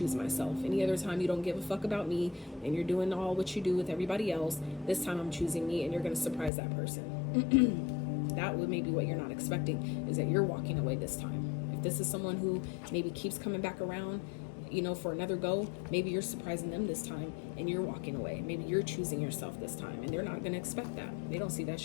myself. Any other time, you don't give a fuck about me and you're doing all what you do with everybody else. This time, I'm choosing me, and you're going to surprise that person. That would maybe what you're not expecting, is that you're walking away this time. If this is someone who maybe keeps coming back around, you know, for another go, maybe you're surprising them this time and you're walking away. Maybe you're choosing yourself this time, and they're not going to expect that. They don't see that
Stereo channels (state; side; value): drops out; right; at 6.5 s